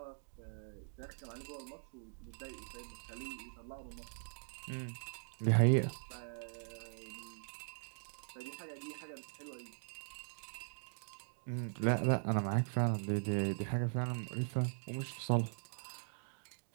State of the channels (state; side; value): silent; left; digital silence